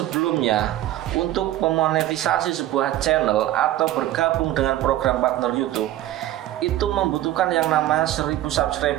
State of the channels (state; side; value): quieter; left; 14.0 dB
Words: untuk memonetisasi sebuah channel atau bergabung dengan program partner YouTube itu membutuhkan yang namanya 1.000